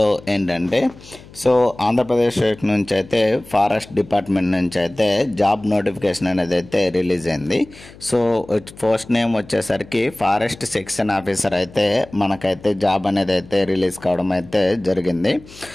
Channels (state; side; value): noise; left; hum, 21 dB below the sound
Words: ఏంటంటే ఆంధ్రప్రదేశ్ స్టేట్ నుంచి అయితే ఫారెస్ట్ డిపార్ట్మెంట్ నుంచి అయితే జాబ్ నోటిఫికేషన్ అనేది అయితే రిలీజ్ అయింది. పోస్ట్ నేమ్ వచ్చేసరికి ఫారెస్ట్ సెక్షన్ ఆఫీసర్ అయితే మనకైతే జాబ్ అనేది అయితే రిలీజ్ కావడం అయితే జరిగింది.